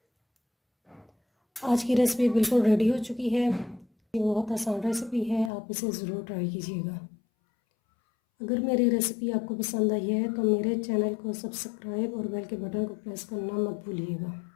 आज की रेसिपी बिल्कुल रेडी हो चुकी है। ये बहुत आसान रेसिपी है, आप इसे ज़रूर ट्राई कीजिएगा। अगर मेरी रेसिपी आपको पसंद आई है तो मेरे चैनल को सब्सक्राइब और बेल के बटन को प्रेस करना मत भूलिएगा।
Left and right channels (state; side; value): drops out; right; at 5.5 s